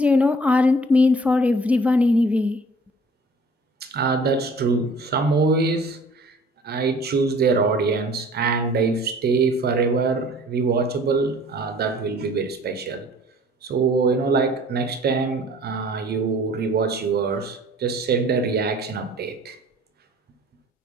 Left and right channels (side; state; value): both; normal; correlation 0.51